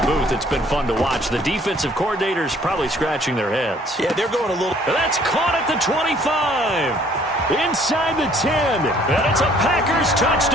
booth, it's been fun to watch. The defensive coordinators probably scratching their heads. Yeah, they're going a little... That's caught at the 25. Inside the 10. And it's a Packers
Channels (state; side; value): normal; both; correlation 0.59